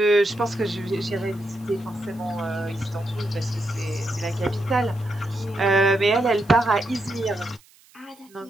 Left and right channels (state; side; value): noise; right; hiss, 28 dB below the sound